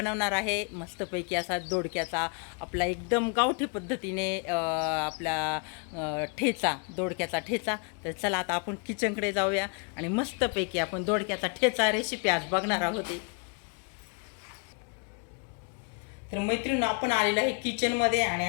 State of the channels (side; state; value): right; quieter; 36.4 dB